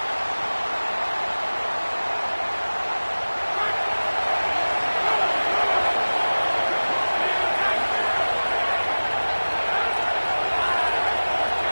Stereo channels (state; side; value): inverted; both; correlation -1.00